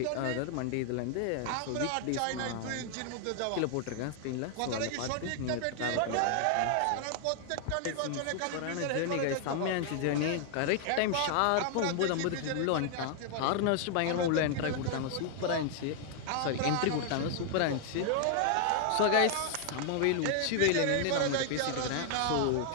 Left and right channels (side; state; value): both; different; correlation 0.00